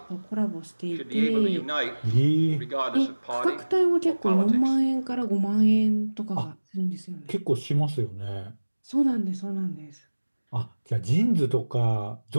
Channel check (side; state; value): both; inverted; correlation -1.00